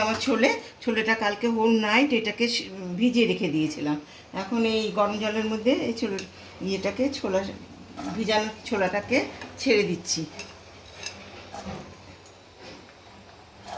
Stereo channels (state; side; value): identical; both; correlation 1.00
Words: আমার ছোলেটা কালকে হোল নাইট এটাকে ভিজিয়ে রেখে দিয়েছিলাম। এখন এই গরম জলের মধ্যে এই ভিজানো ছোলাটাকে ছেড়ে দিচ্ছি।